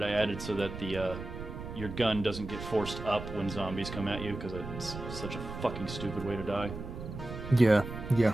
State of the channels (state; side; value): noise; right; rumble, 9 dB below the sound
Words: I added so that your gun doesn't get forced up when zombies come at you, because it's such a fucking stupid way to die. Yeah.